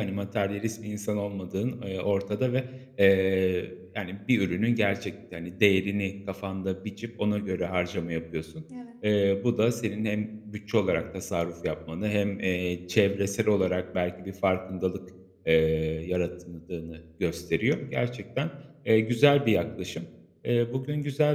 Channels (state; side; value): identical; both; correlation 1.00